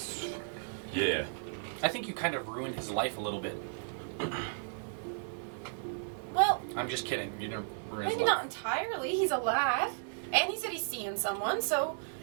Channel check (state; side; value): silent; left; 55 dB below the other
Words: Yeah. I think you kind of ruined his life a little bit. Well, I'm just kidding. You didn't ruin his maybe life. not entirely. He's alive. And he said he's seeing someone, so